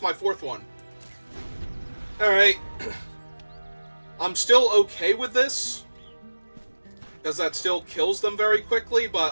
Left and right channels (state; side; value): inverted; both; correlation -1.00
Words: my 4th one? Alright. I'm still okay with this, because that still kills them very quickly,